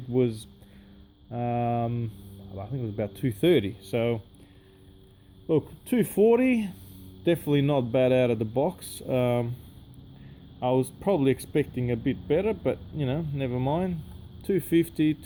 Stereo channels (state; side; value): identical; both; correlation 1.00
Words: was I think it was about 230. So look, 240, definitely not bad out of the box. I was probably expecting a bit better, but you know, never mind. 250,